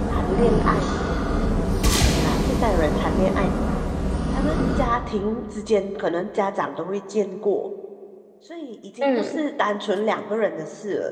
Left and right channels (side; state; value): both; identical; correlation 1.00